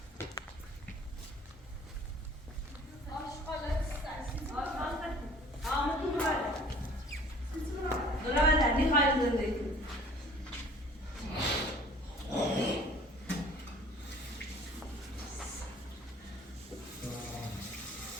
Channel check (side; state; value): both; normal; correlation 0.51